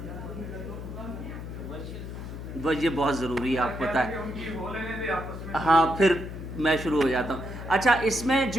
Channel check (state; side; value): noise; left; hum, 9 dB below the sound